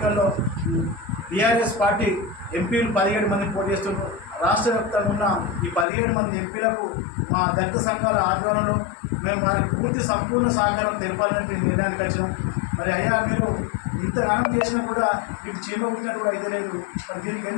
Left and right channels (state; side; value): drops out; right; at 5.9 s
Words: టీఆర్ఎస్ పార్టీ ఎంపీలు 17 మంది పోటీ చేస్తున్నారు. రాష్ట్ర వ్యాప్తంగా ఉన్న ఈ 17 మంది ఎంపీలకు మా దళిత సంఘాల ఆధ్వర్యంలో మేము వారికి సంపూర్ణ సహకారం తెలపాలని నిర్ణయానికి వచ్చినాం. మరి అయ్యా మీరు ఇంతగానం చేసినా కూడా మీకు చీమ పుట్టినట్టు కూడా అయితే లేదు, మరి దీనికి